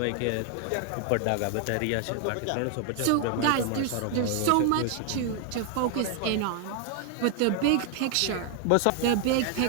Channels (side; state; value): both; different; correlation 0.00